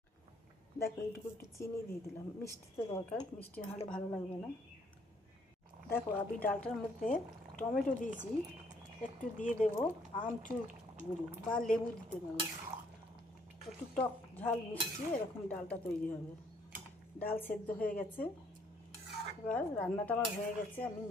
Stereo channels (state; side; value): normal; both; correlation 0.66